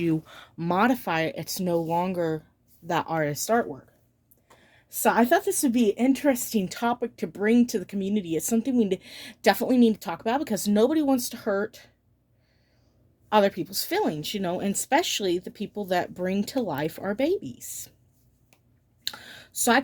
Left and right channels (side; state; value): both; identical; correlation 1.00